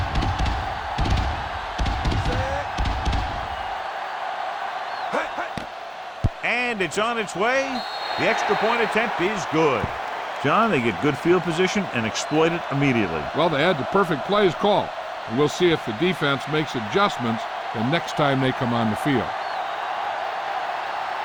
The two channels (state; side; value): identical; both; correlation 1.00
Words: And it's on its way. The extra point attempt is good. John, they get good field position and exploit it immediately. Well, they had the perfect plays called. And we'll see if the defense makes adjustments the next time they come on the field.